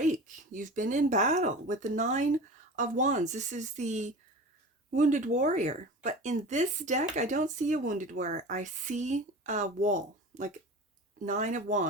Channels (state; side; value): normal; both; correlation 0.34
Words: You've been in battle with the 9 of Wands. This is the wounded warrior. But in this deck, I don't see a wounded warrior. I see a wall, like 9 of